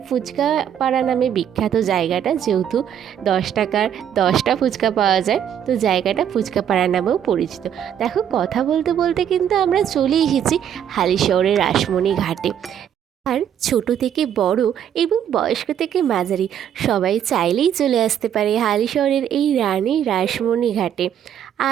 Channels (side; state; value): left; quieter; 9.4 dB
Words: ফুচকাপাড়া নামে বিখ্যাত জায়গাটা, যেহেতু 10 টাকার 10টা ফুচকা পাওয়া যায়, তো জায়গাটা ফুচকাপাড়া নামেও পরিচিত। দেখো, কথা বলতে বলতে কিন্তু আমরা চলে এসেছি হালিশহরের রাসমণি ঘাটে। আর ছোট থেকে বড় এবং বয়স্ক থেকে মাঝারি সবাই চাইলেই চলে আসতে পারে হালিশহরের এই রানী রাসমণি ঘাটে।